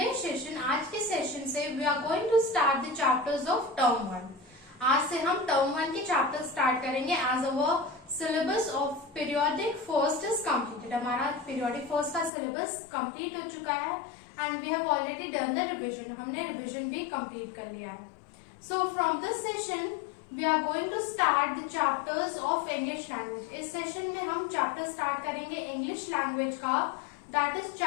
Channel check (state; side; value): drops out; right; at 12.3 s